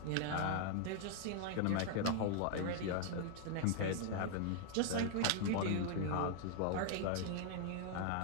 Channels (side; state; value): both; different; correlation 0.00